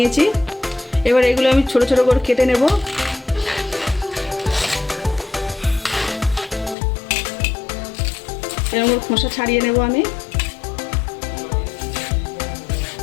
এবার এগুলো আমি ছোট ছোট করে কেটে নেব। এরকম খোসা ছাড়িয়ে নেব আমি।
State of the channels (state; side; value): drops out; right; at 6.8 s